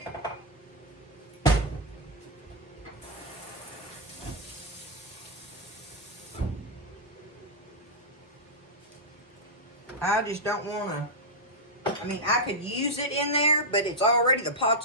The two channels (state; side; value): normal; both; correlation -0.05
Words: I just don't want to, I mean, I could use it in there, but it's already, the